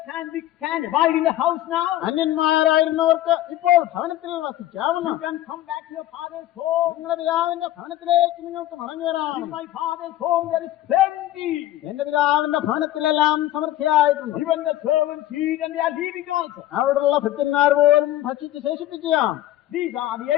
can abide in the house now. അന്യന്മാരായിരുന്നവർക്ക് ഇപ്പോൾ ഭവനത്തിൽ വസിക്കാവുന്ന. You can come back to your father's home. നിങ്ങളുടെ പിതാവിന്റെ ഭവനത്തിലേക്ക് നിങ്ങൾക്ക് മടങ്ങി വരാം. In my father's home there is plenty. എന്റെ പിതാവിന്റെ ഭവനത്തിലെല്ലാം സമൃദ്ധിയായിട്ടുണ്ട്. Even the servants eat and they are leaving also. അവിടെയുള്ള ഭൃത്യന്മാർ പോലും ഭക്ഷിച്ച് ശേഷിപ്പിക്കുകയാണ്. These are the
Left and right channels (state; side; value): quieter; right; 14.0 dB